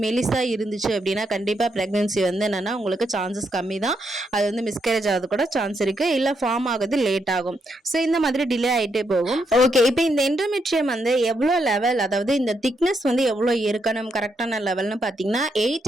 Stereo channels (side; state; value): both; normal; correlation 0.79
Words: மெலிசாக இருந்துச்சு அப்படின்னா கண்டிப்பாக ப்ரெக்னன்சி வந்து என்னென்னா உங்களுக்கு சான்சஸ் கம்மி தான். அது வந்து மிஸ்கேரேஜ் ஆகுது கூட சான்ஸ் இருக்கு, இல்ல ஃபார்ம் ஆகுது லேட் ஆகும். ஸோ இந்த மாதிரி டிலே ஆகிட்டே போகும். ஓகே, இப்போ இந்த எண்டோமெட்ரியம் வந்து எவ்வளோ லெவல், அதாவது இந்த திக்னஸ் வந்து எவ்வளோ இருக்கணும் கரெக்டான லெவல்னு பார்த்தீங்கன்னா